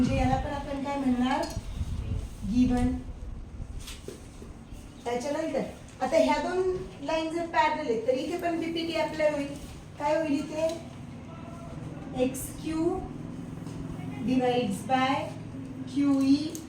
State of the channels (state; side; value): identical; both; correlation 1.00